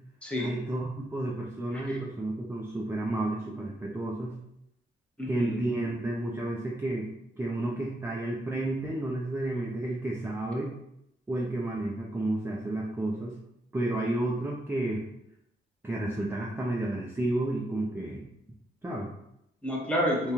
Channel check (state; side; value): normal; both; correlation 0.78